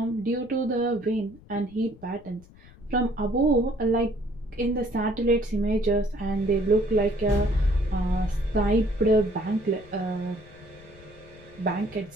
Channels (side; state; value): left; noise; rumble, 23 dB below the sound